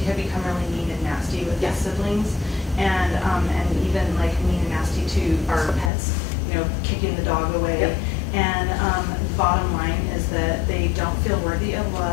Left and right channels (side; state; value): right; drops out; at 5.9 s